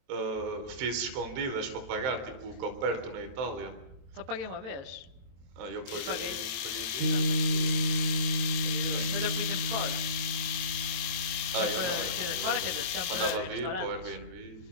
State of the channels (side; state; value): left; late; 22 ms